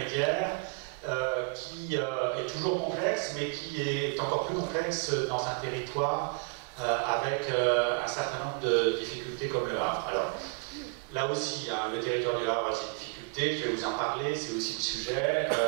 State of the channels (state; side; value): quieter; left; 39.1 dB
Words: qui est toujours complexe, mais qui est encore plus complexe dans un territoire avec un certain nombre de difficultés comme le Havre. Alors, là aussi, hein, le territoire du Havre a ses difficultés, je vais vous en parler, c'est aussi le sujet.